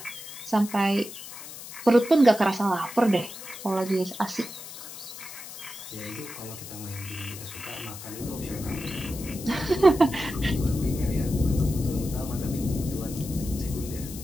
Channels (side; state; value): left; noise; hiss, 12 dB below the sound